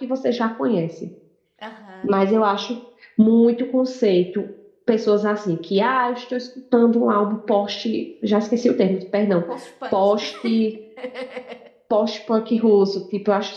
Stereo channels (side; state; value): both; identical; correlation 1.00